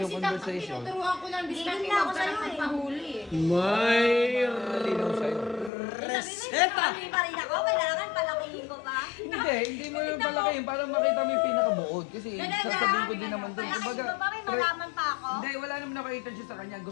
si Taktak, conversation. tinuturuan ko ng diskarte, Hindi na ako huwag ka lang sa'yo eh. magpahuli eh. May. Malinaw sa'yo. Reseta! Sabi pa rin ako, kailangan palakihin ko pa. Hindi mo yung palakihin para makita mo yung pinakabuod. Kasi sasabihin ko din naman doon. Palakihin Kumbaga, ko pa, may malaman pa ako. hindi, wala naman ako intention sa kanya.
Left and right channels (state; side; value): drops out; right; at 5.7 s